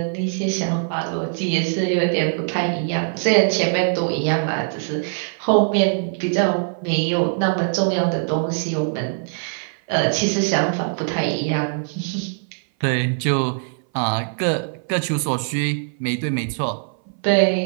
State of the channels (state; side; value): silent; left; 58 dB below the other